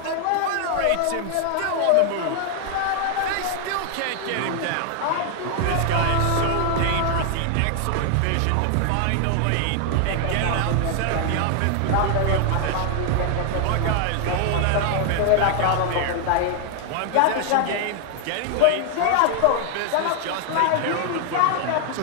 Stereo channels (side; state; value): both; different; correlation 0.00